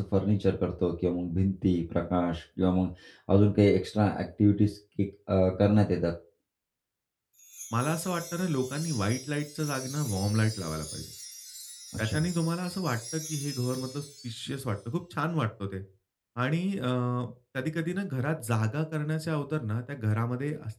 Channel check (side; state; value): both; identical; correlation 1.00